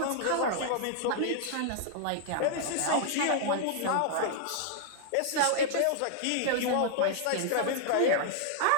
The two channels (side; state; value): both; different; correlation -0.01